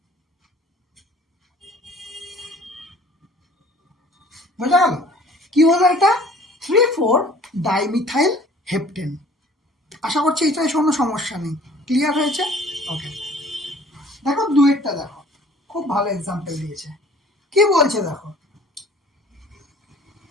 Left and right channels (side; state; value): both; normal; correlation 0.51